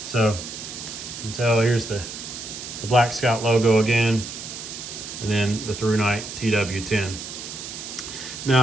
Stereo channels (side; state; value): right; noise; hiss, 9 dB below the sound